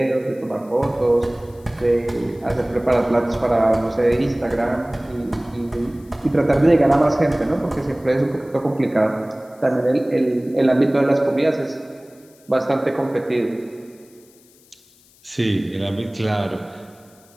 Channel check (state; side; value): noise; left; hiss, 29 dB below the sound